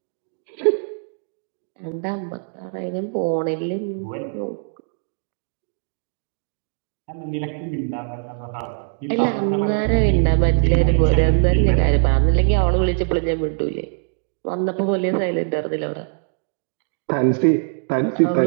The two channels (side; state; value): left; silent; digital silence